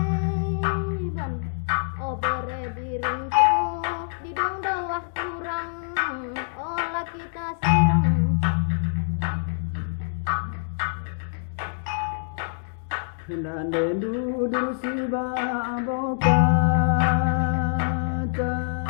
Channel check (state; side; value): silent; right; digital silence